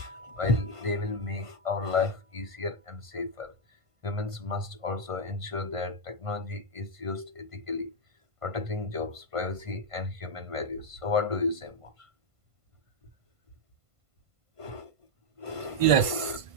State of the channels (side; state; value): left; late; 1.5 ms